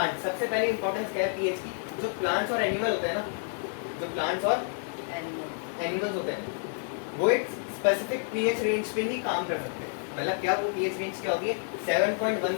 सबसे पहले इंपॉर्टेंस क्या है पीएच की, जो प्लांट्स और एनिमल होते हैं ना, जो प्लांट्स और एनिमल्स होते हैं वो एक स्पेसिफिक पीएच रेंज पे ही काम कर सकते हैं। मतलब क्या, वो पीएच रेंज क्या होती है,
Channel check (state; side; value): silent; right; 58 dB below the other